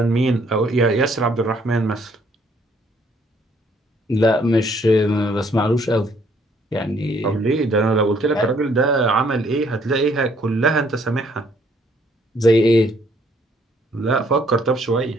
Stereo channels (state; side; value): normal; both; correlation 0.65